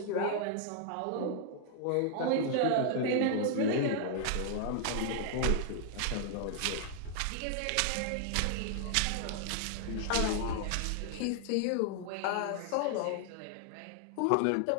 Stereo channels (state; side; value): different; both; correlation 0.00